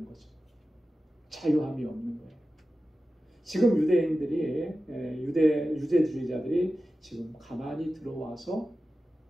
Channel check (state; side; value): normal; both; correlation 0.94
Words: 거죠. 자유함이 없는 거예요. 지금 유대인들이 유대주의자들이 지금 가만히 들어와서